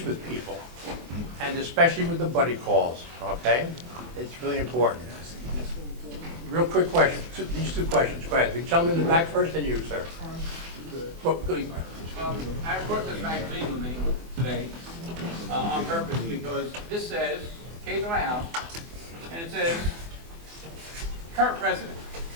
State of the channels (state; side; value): late; left; 24 ms